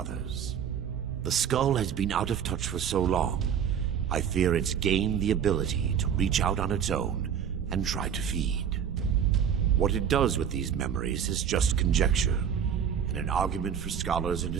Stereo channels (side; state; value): left; quieter; 8.2 dB